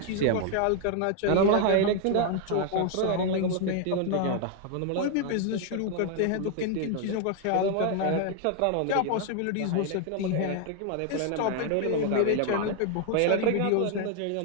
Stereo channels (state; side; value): different; both; correlation 0.00